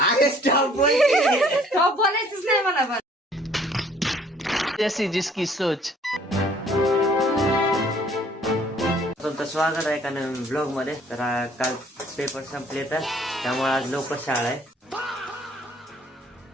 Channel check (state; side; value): normal; both; correlation 0.58